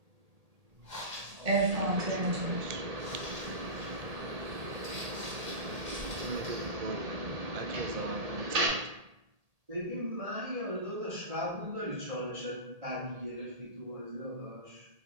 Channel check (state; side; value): late; left; 1.8 ms